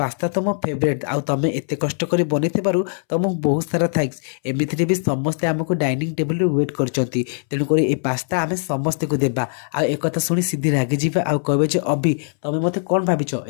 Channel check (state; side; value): silent; right; 65 dB below the other